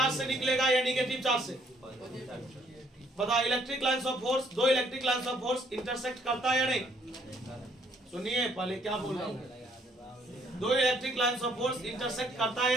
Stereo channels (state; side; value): normal; both; correlation 0.66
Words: से निकलेगा या निगेटिव चार्ज से? बता, इलेक्ट्रिक लाइन्स ऑफ फोर्स, दो electric lines of force intersect करता है या नहीं? सुनिए पहले क्या बोल रहा हूँ, दो electric lines of force intersect करता है